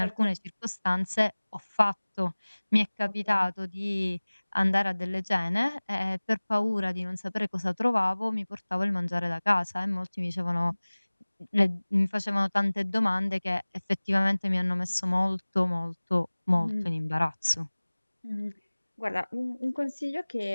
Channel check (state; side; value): inverted; both; correlation -1.00